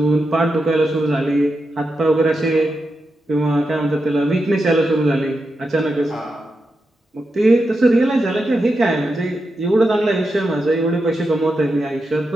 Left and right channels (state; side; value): normal; both; correlation 0.88